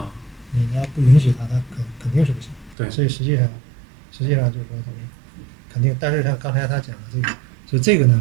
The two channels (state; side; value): drops out; left; at 2.8 s